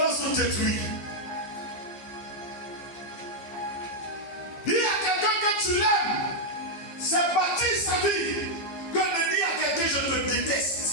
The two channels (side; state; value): right; late; 15 ms